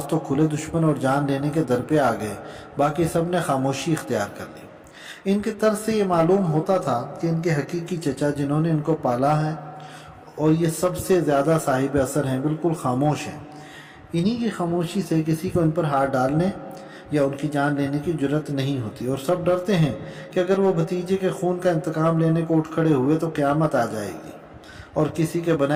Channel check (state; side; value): identical; both; correlation 1.00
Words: तो खुले दुश्मन और जान लेने के दर पे आ गए, बाकी सब ने खामोशी इख्तियार कर ली। इनके तर्ज से ये मालूम होता था कि इनके हकीकी चचा जिन्होंने इनको पाला है और ये सबसे ज़्यादा साहिब असर हैं बिल्कुल खामोश हैं। इन्हीं की खामोशी से किसी को इन पर हाथ डालने या उनकी जान लेने की जुर्रत नहीं होती और सब डरते हैं कि अगर वो भतीजे के खून का इंतकाम लेने को उठ खड़े हुए तो क़यामत आ जाएगी और किसी के